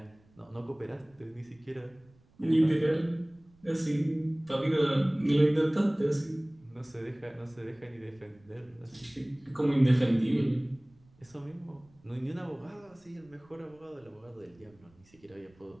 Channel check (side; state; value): right; noise; rumble, 30 dB below the sound